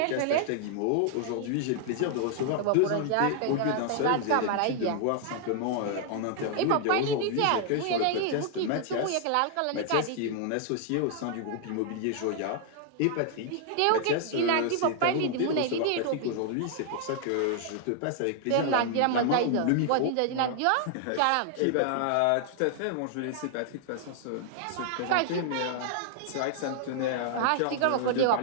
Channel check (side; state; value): both; different; correlation 0.00